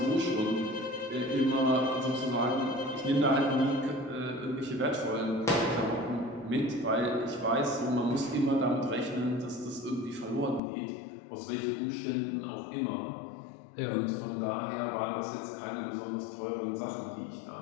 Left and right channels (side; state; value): right; drops out; at 10.6 s